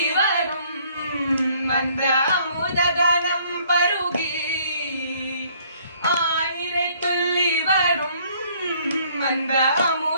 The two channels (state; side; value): inverted; both; correlation -0.61